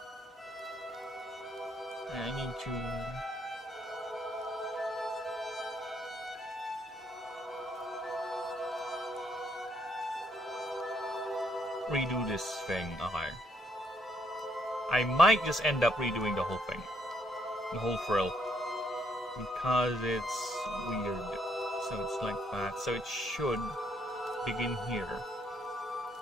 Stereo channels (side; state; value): both; normal; correlation 0.71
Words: I need to redo this thing. Okay. I might just end up redoing the whole thing. The whole frill. Because it's weird. So it's like that. So it should begin here.